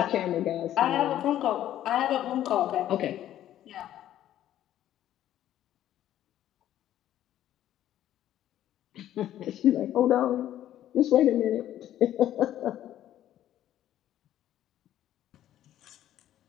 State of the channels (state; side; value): quieter; right; 12.2 dB